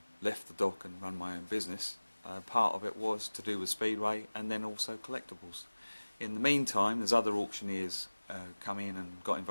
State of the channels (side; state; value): both; inverted; correlation -1.00